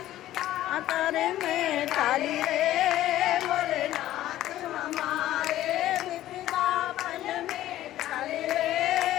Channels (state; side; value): quieter; right; 13.9 dB